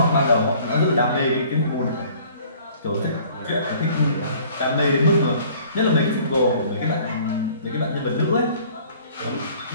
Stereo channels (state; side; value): inverted; both; correlation -0.53